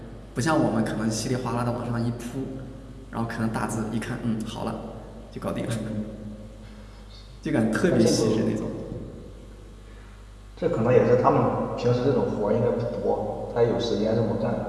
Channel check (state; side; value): identical; both; correlation 1.00